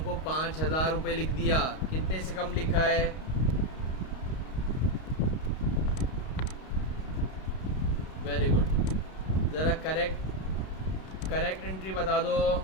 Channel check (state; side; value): late; right; 32 ms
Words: को 5,000 रुपये लिख दिया। कितने से कम लिखा है? Very good. ज़रा करेक्ट एंट्री बता दो।